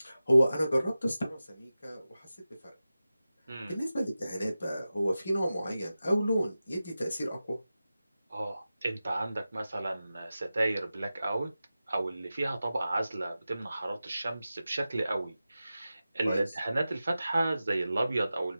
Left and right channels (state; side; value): inverted; both; correlation -0.94